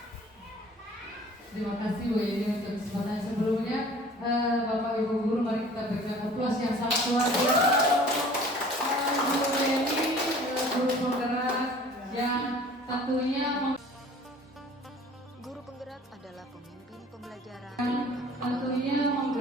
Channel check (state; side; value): normal; both; correlation 0.48